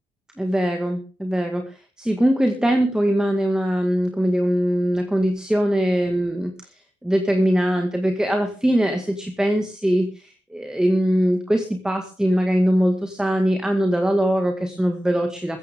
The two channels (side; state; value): both; normal; correlation 0.95